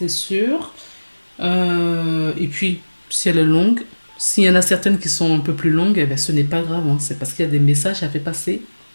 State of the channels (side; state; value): both; inverted; correlation -1.00